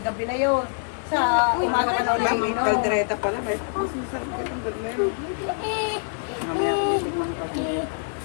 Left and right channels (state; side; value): silent; right; 59 dB below the other